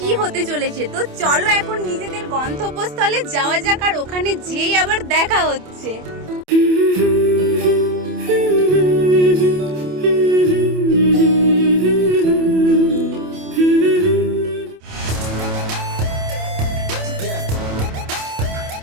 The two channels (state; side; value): late; left; 27 ms